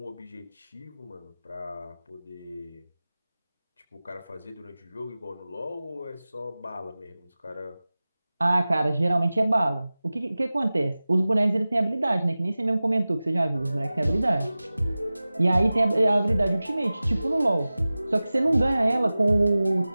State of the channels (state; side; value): inverted; both; correlation -0.97